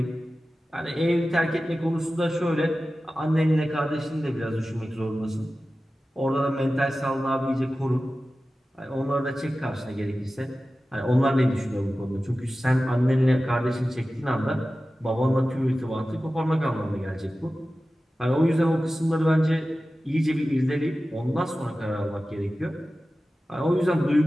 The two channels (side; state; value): both; normal; correlation 0.95